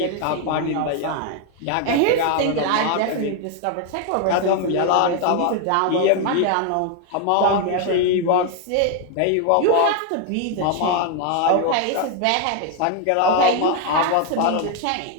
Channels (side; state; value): both; different; correlation 0.01